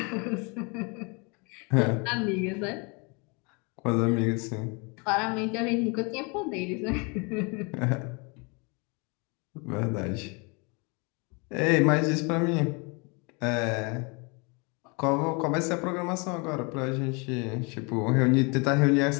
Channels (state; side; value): quieter; right; 31.2 dB